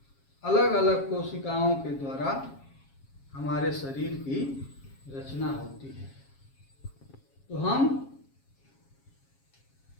अलग अलग कोशिकाओं के द्वारा हमारे शरीर की रचना होती है। तो हम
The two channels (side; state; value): right; late; 7.3 ms